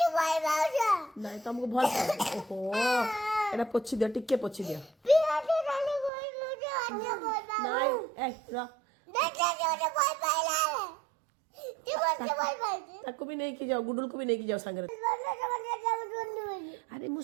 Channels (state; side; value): drops out; left; at 6.1 s